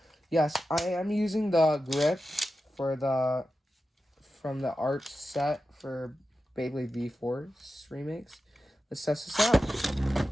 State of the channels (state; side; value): normal; both; correlation 0.92